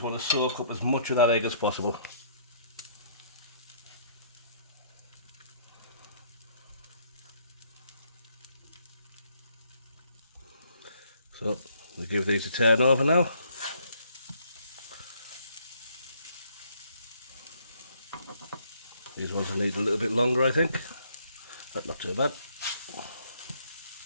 want to soak up as much of that egg as possible. So we'll give these a turn over now. These ones will need a little bit longer, I think. That's not too bad.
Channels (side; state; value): both; inverted; correlation -0.65